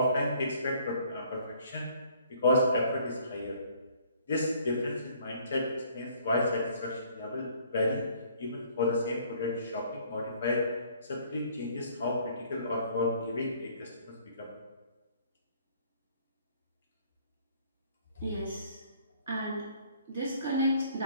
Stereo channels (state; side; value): inverted; both; correlation -0.59